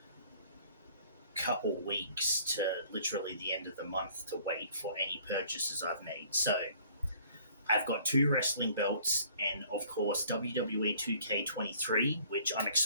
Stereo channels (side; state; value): both; inverted; correlation -0.56